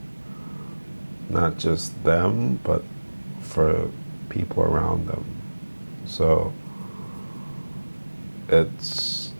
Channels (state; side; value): inverted; both; correlation -1.00